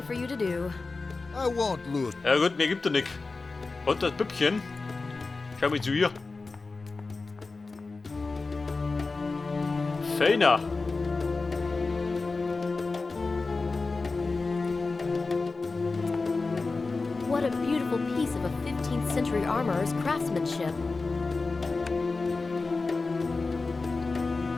for you to do. I won't lose. Ja gut, mir gibt er nix. Und das Püppchen. Schau mal zu ihr. Feiner. What a beautiful piece of a 15th century armorer's craftsmanship.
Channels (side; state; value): right; quieter; 3.8 dB